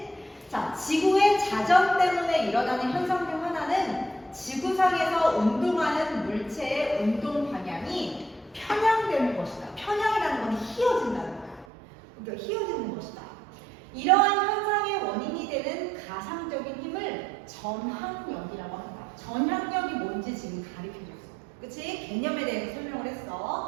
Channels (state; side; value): drops out; left; at 11.7 s